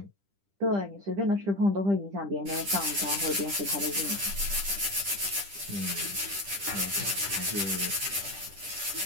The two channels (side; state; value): left; late; 10 ms